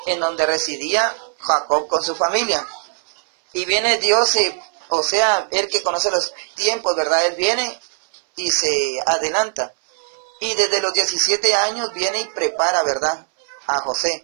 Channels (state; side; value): silent; left; 63 dB below the other